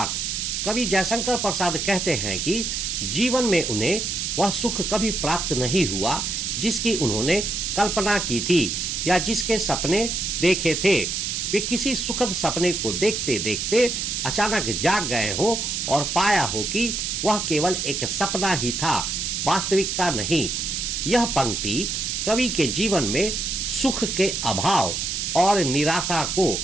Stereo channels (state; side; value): noise; right; hiss, 2 dB below the sound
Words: कवि जयशंकर प्रसाद कहते हैं कि जीवन में उन्हें वह सुख कभी प्राप्त नहीं हुआ जिसकी उन्होंने कल्पना की थी या जिसके सपने देखे थे। वे किसी सुखद सपने को देखते देखते अचानक जाग गए हो और पाया हो कि वह केवल एक सपना ही था, वास्तविकता नहीं। यह पंक्ति कवि के जीवन में सुख के अभाव और निराशा को